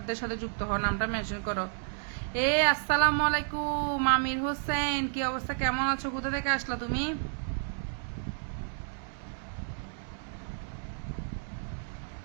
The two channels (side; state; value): left; silent; digital silence